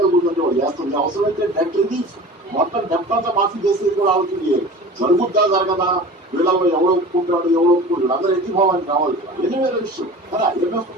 గురించి వాళ్ళు చేస్తుంది. అవసరమైతే డెట్ రిలీఫ్ మొత్తం డెప్ట్ అంతా మాఫీ చేసేది కూడా ఆలోచన చేయాలి. జరుగుద్దా జరగదా, వీళ్ళలో ఎవరు ఒప్పుకుంటాడు ఎవరు ఒప్పుకుంటాడు, అందరూ ఎత్తిపోవాలని కావాలి. ఎన్ని వేల విషయం కదా. IMF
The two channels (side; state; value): both; normal; correlation 0.38